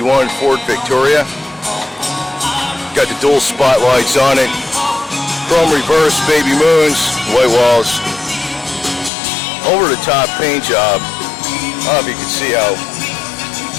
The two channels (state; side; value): drops out; right; at 9.1 s